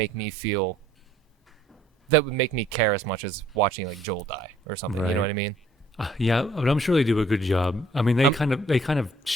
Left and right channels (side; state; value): both; normal; correlation 0.60